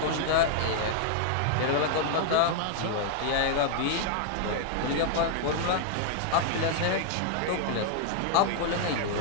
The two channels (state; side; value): different; both; correlation 0.00